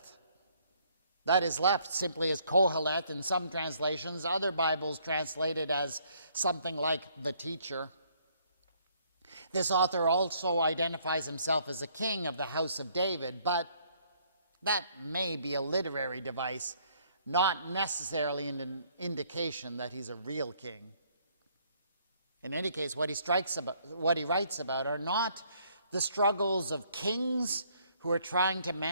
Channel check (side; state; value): both; inverted; correlation -0.66